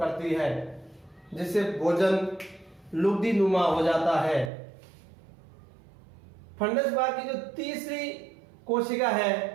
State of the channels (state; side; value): drops out; left; at 4.5 s